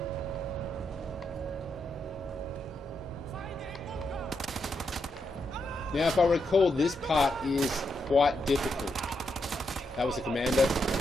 Now, if I recall, this part is quite difficult. That was a commander.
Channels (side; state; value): both; normal; correlation 0.82